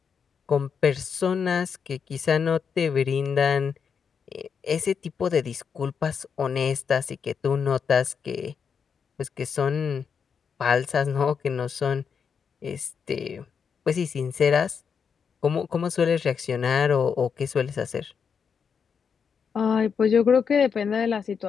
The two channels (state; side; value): quieter; right; 6.5 dB